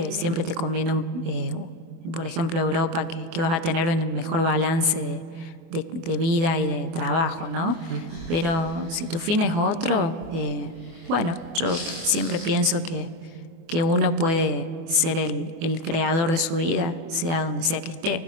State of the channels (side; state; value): left; late; 24 ms